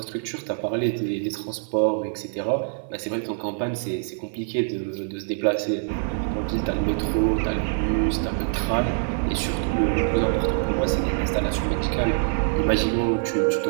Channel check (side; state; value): left; silent; 60 dB below the other